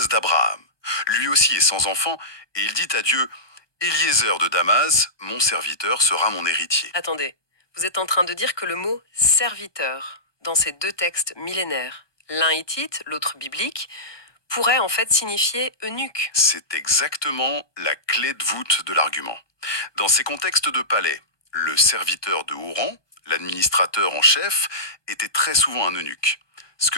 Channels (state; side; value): late; right; 1.2 ms